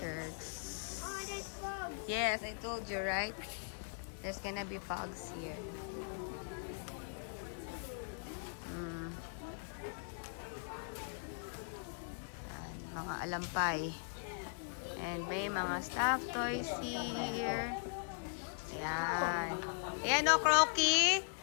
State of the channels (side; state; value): right; silent; digital silence